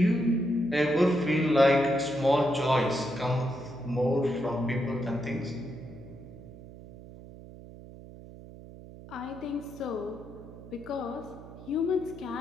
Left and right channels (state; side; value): noise; right; hum, 16 dB below the sound